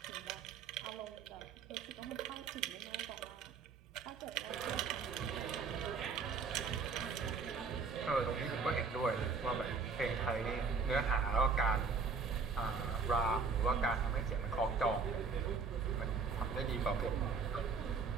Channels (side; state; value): left; quieter; 4.9 dB